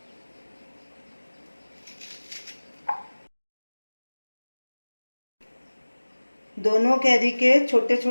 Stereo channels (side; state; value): both; inverted; correlation -1.00